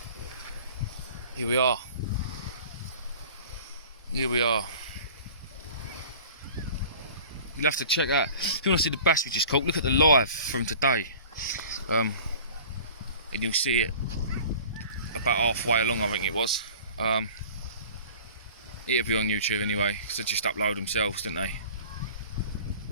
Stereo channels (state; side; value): inverted; both; correlation -0.44